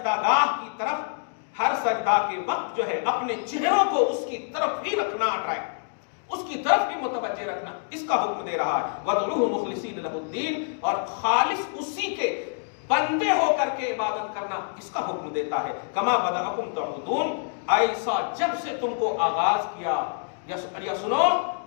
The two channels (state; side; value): silent; right; digital silence